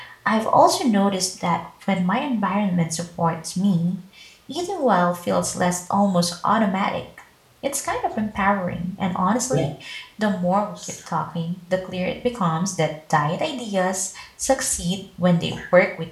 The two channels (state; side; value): identical; both; correlation 1.00